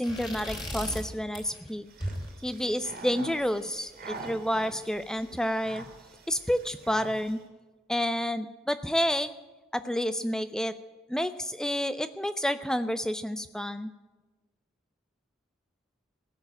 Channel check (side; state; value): both; normal; correlation 0.85